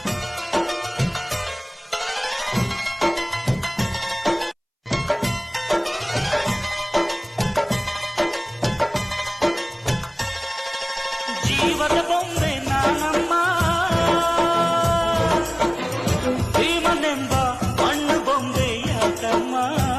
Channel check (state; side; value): identical; both; correlation 1.00